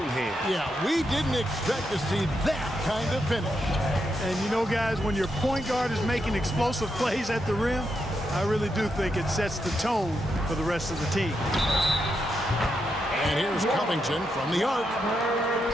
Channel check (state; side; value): normal; both; correlation 0.83